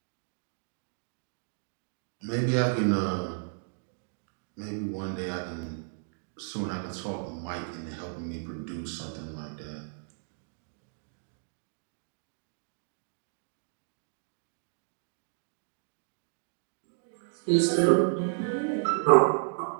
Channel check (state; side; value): silent; left; digital silence